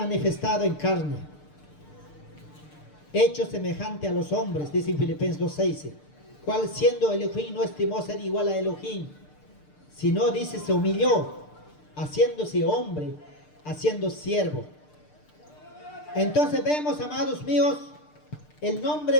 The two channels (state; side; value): late; right; 6.7 ms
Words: en carne, hecho semejante a los hombres, dice en Filipenses 2:6, cual siendo Elohim no estimó ser igual a Elohim, sino dice se humilló, haciéndose hombre, haciendo siervo. Entonces vemos, amados míos, el nombre